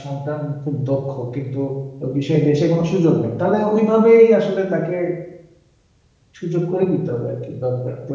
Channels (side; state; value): both; identical; correlation 1.00